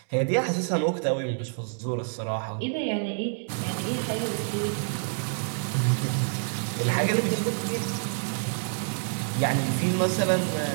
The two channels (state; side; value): silent; left; 60 dB below the other